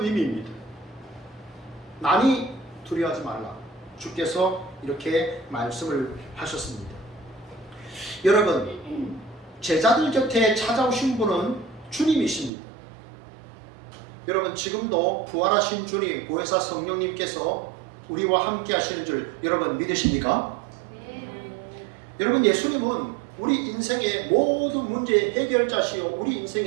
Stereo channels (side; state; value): left; drops out; at 12.5 s